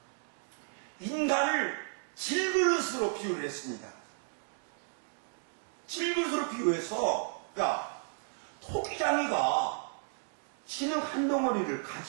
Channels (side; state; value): left; silent; 55 dB below the other